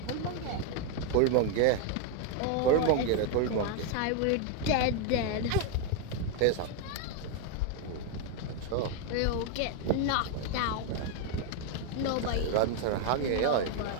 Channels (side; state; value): both; different; correlation 0.01